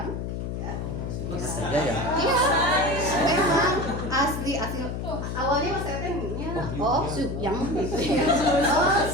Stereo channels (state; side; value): noise; left; hum, 4 dB below the sound